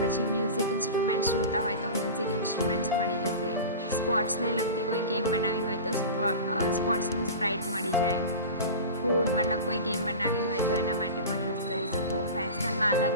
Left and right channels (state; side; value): inverted; both; correlation -0.31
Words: પછી મ્યુઝિક ઇન્સ્ટ્રુમેન્ટ્સ જોતા હોય તો મ્યુઝિક ઇન્સ્ટ્રુમેન્ટ્સ મળી જશે. સ્પોર્ટ્સને લગતી કોઈ ગેમ બનાવવી હોય તો સ્પોર્ટ્સનું સ્પ્રાઇટ મળી જાય. ફૂડ મતલબ કોઈ ગેમ બનાવવી હોય તો એના માટે પણ યુઝ કરી શકો. ફેશનમાં